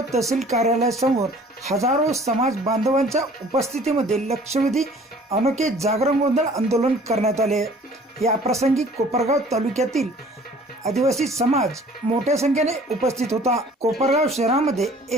तहसील कार्यालयासमोर हजारो समाज बांधवांच्या उपस्थितीमध्ये लक्षवेधी अनोखे जागरण गोंधळ आंदोलन करण्यात आले। या प्रसंगी कोपरगाव तालुक्यातील आदिवासी समाज मोठ्या संख्येने उपस्थित होता। कोपरगाव शहरामध्ये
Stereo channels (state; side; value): normal; both; correlation 0.52